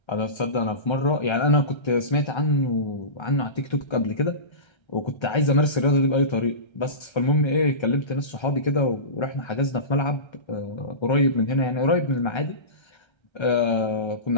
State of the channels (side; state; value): right; late; 1.3 ms